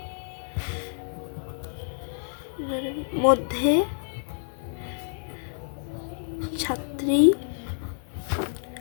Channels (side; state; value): right; silent; digital silence